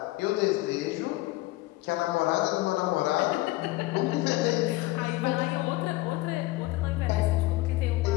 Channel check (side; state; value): right; quieter; 19.1 dB